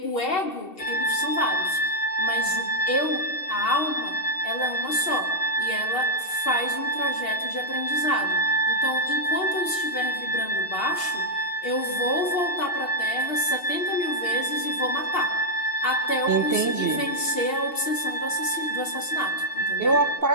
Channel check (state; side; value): late; right; 2.7 ms